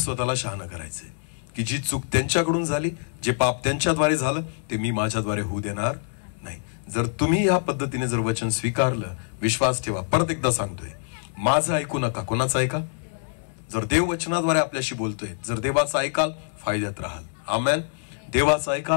शहाणा करायचे की जी चूक त्यांच्याकडून झाली, जे पाप त्यांच्याद्वारे झालं, ते मी माझ्याद्वारे होऊ देणार नाही. जर तुम्ही या पद्धतीने जर वचन स्वीकारलं, विश्वास ठेवा. परत एकदा सांगतोय, माझं ऐकू नका. कोणाचं ऐका? जर देव वचनाद्वारे आपल्याशी बोलतोय, जर देवाचं ऐकाल, फायद्यात राहाल. आमेन. देवाचं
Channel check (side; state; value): right; silent; digital silence